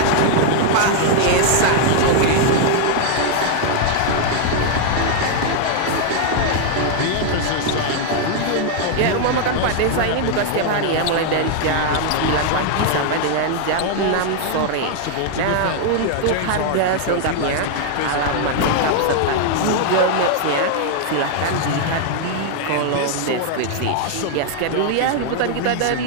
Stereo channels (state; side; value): different; both; correlation 0.00